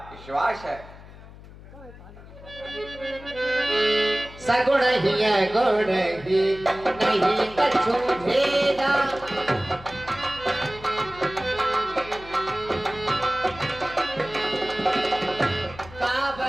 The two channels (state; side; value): noise; left; hum, 18 dB below the sound